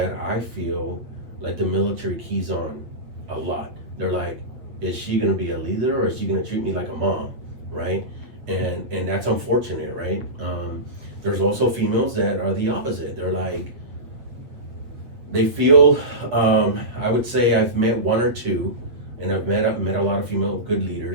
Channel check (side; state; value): left; late; 8.6 ms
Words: I feel like the military keys on a lot. They're like, is she gonna be a leader, or is she gonna treat me like a mom, right? And that's unfortunate, right? There's also females that are the opposite. They're like, they feel, I would say I've met one or two, and I've met a lot of female good